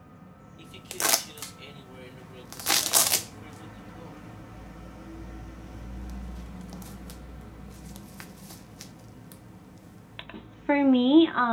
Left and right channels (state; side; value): identical; both; correlation 1.00